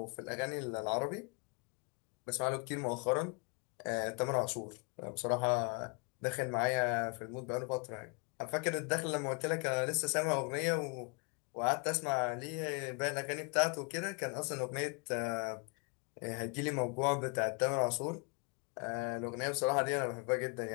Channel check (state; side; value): quieter; right; 35.1 dB